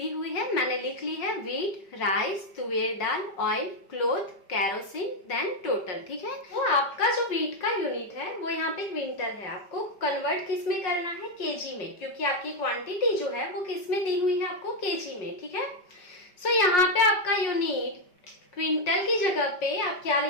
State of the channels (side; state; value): right; late; 5.1 ms